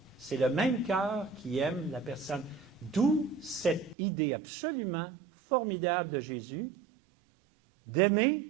c'est le même cœur qui aime la personne. D'où cette idée absolument formidable de Jésus d'aimer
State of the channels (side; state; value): left; drops out; at 4.0 s